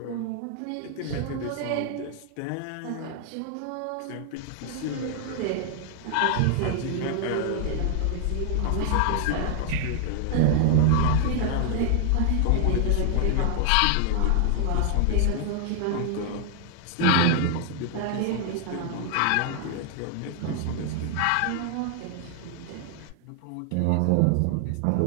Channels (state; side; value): different; both; correlation 0.00